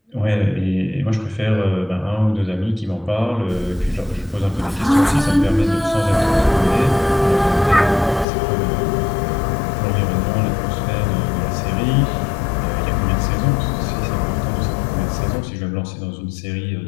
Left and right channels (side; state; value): right; drops out; at 8.2 s